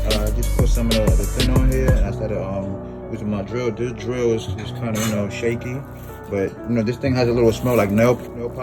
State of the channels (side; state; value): both; identical; correlation 1.00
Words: Just put some of the thin on here. And I started using my drill. This drill is just kind of, shaky. But, this thing has a little smell like nail